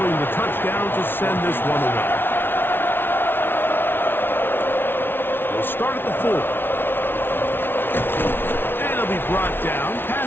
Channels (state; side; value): late; right; 0.11 ms